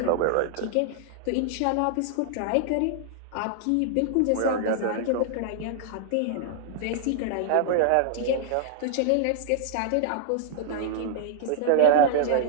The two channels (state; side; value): different; both; correlation -0.01